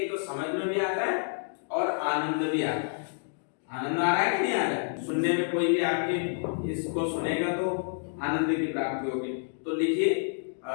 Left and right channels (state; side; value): silent; right; digital silence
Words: तो समझ में भी आता है और आनंद भी आता है। आनंद आ रहा है कि नहीं आ रहा है? सुनने में कोई भी आपके इसको सुनेगा तो आनंद की प्राप्ति होगी। तो लिखिए,